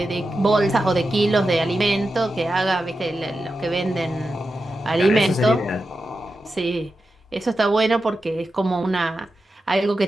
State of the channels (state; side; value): normal; both; correlation 0.91